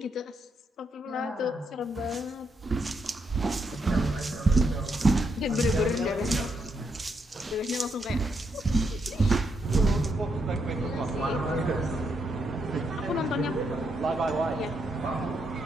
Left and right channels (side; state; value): both; normal; correlation 0.79